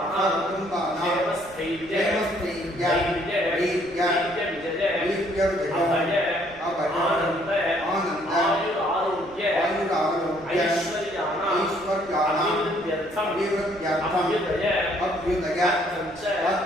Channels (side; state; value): right; noise; rumble, 24 dB below the sound